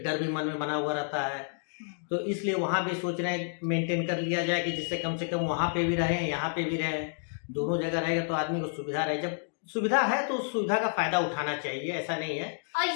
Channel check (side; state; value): right; silent; digital silence